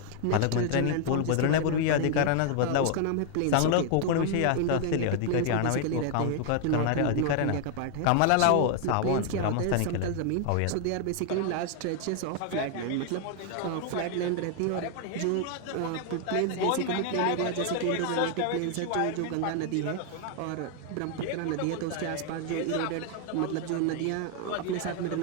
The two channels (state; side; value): different; both; correlation 0.00